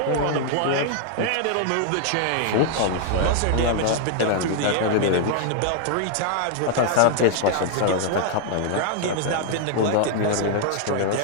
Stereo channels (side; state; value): both; different; correlation 0.00